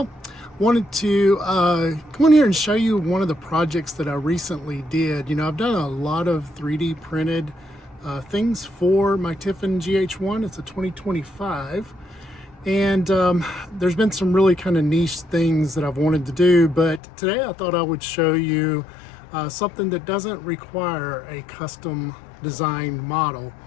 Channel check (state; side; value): drops out; right; at 17.0 s